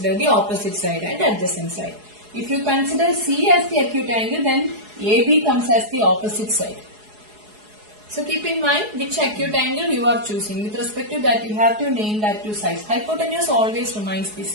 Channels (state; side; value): late; left; 4.8 ms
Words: the opposite side and adjacent side. If you consider C as the acute angle, then AB comes as the opposite side. So keep in mind which acute angle you are choosing. With respect to that, you have to name that two sides. Hypotenuse always remains the